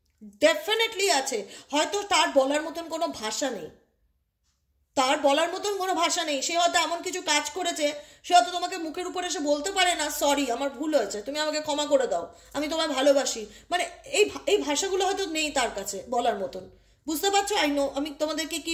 ডেফিনেটলি আছে। হয়তো তার বলার মতন কোনো ভাষা নেই, তার বলার মতন কোনো ভাষা নেই, সে হয়তো এমন কিছু কাজ করেছে, সে হয়তো তোমাকে মুখের উপর এসে বলতে পারে না সরি আমার ভুল হয়েছে, তুমি আমাকে ক্ষমা করে দাও, আমি তোমায় ভালোবাসি, মানে এই ভাষাগুলো হয়তো নেই তার কাছে বলার মতন। বুঝতে পারছো? আই নো আমি তোমাদেরকে কি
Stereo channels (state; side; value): identical; both; correlation 1.00